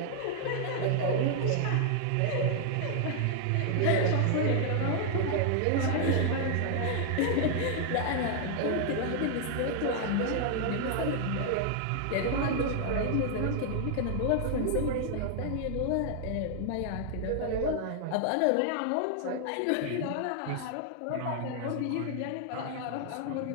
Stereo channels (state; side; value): different; both; correlation 0.00